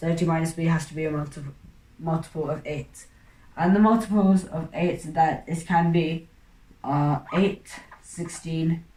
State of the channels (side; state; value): both; identical; correlation 1.00